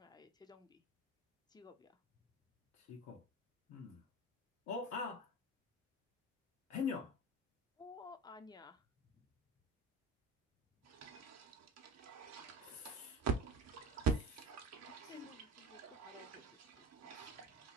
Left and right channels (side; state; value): both; normal; correlation 0.32